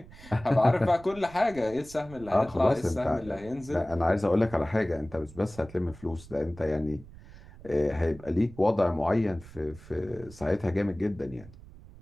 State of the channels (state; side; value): noise; right; rumble, 19 dB below the sound